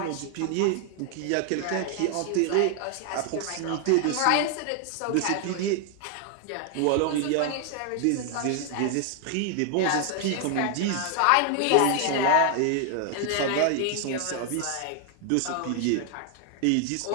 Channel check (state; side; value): different; both; correlation 0.00